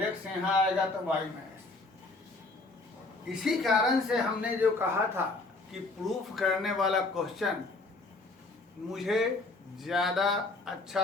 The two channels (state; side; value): quieter; right; 3.3 dB